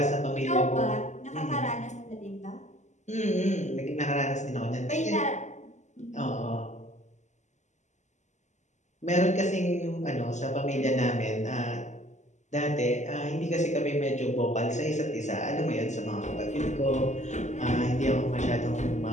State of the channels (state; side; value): late; right; 0.34 ms